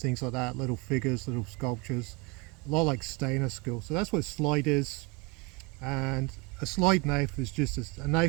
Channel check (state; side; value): quieter; left; 26.3 dB